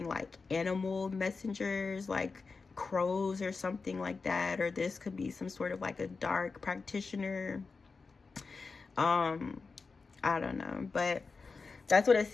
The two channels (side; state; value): right; quieter; 4.5 dB